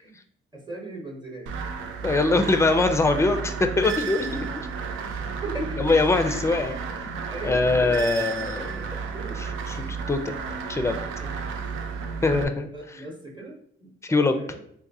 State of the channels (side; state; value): both; normal; correlation 0.65